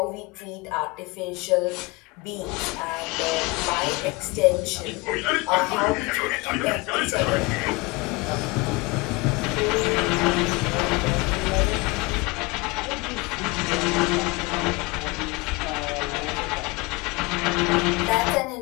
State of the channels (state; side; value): quieter; right; 25.1 dB